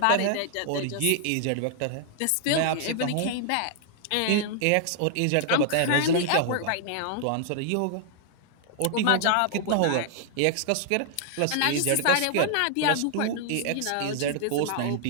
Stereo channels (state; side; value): different; both; correlation 0.00